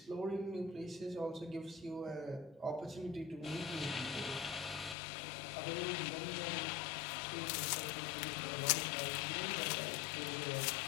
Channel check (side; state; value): right; drops out; at 5.0 s